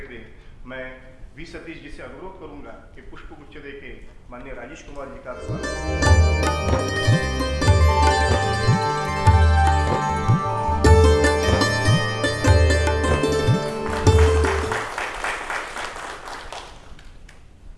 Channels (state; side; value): identical; both; correlation 1.00